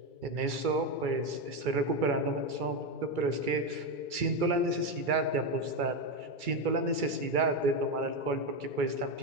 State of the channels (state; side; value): late; left; 2.3 ms